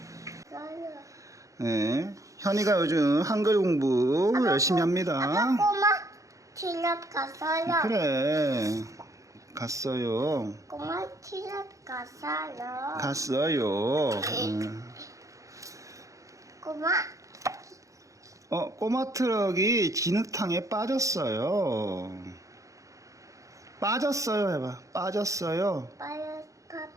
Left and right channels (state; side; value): late; left; 0.16 ms